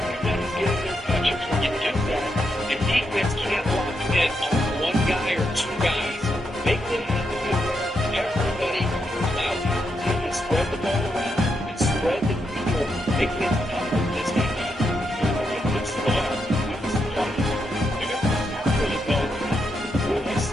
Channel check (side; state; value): both; normal; correlation 0.82